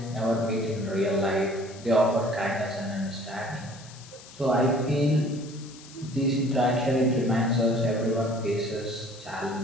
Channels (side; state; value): left; noise; hiss, 19 dB below the sound